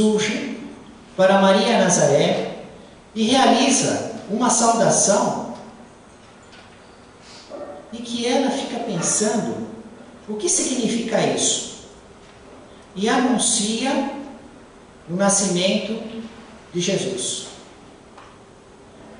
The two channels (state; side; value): identical; both; correlation 1.00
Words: para Maria Nazaré e realiza uma saudação e que ela fica pensando o que significa isso e anuncia o nascimento de Jesus.